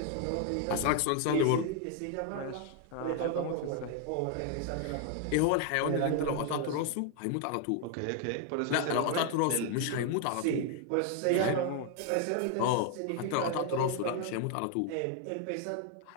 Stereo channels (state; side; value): different; both; correlation 0.00